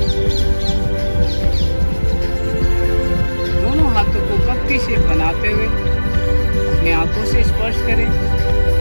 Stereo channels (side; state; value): both; inverted; correlation -1.00